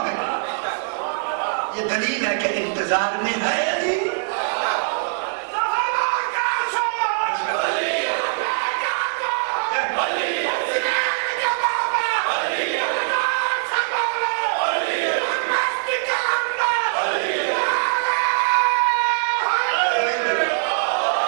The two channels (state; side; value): silent; left; digital silence